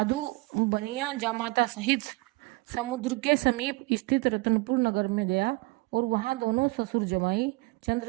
बनिया जामाता सहित समुद्र के समीप स्थित रतनपुर नगर में गया और वहां दोनों ससुर जमाई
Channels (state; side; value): quieter; left; 24.8 dB